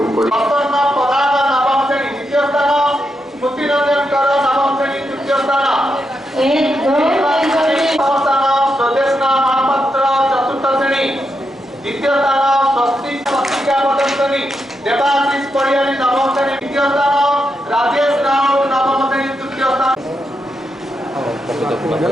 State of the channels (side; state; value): both; normal; correlation 0.84